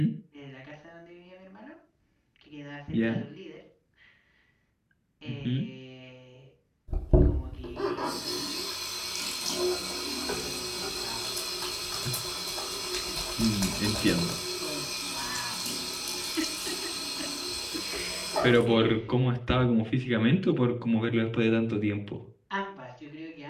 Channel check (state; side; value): identical; both; correlation 1.00